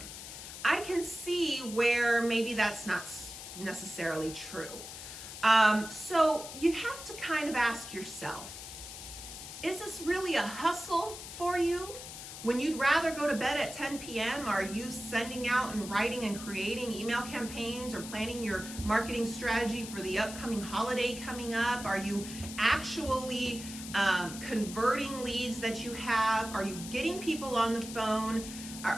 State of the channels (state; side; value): noise; left; hiss, 11 dB below the sound